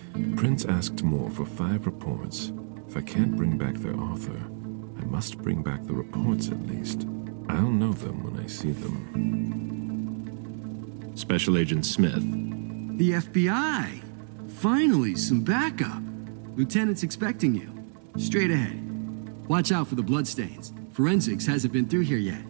Prince asked more for 5 reports. If I can't bring back their author, I must bring back the reports at least. I'll know them when I see them. Special Agent Smith. The FBI! Finally, some backup. Lieutenant's expecting you. Straight ahead. Watch out for the bloodstains. Forensics hasn't been through here yet.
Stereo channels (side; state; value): left; silent; digital silence